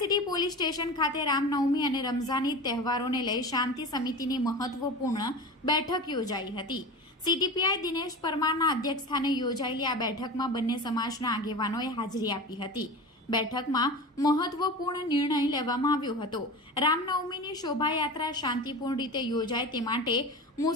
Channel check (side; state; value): both; normal; correlation 0.30